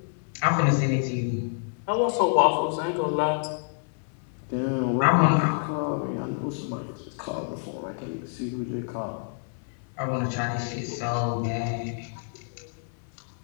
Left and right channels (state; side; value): silent; right; digital silence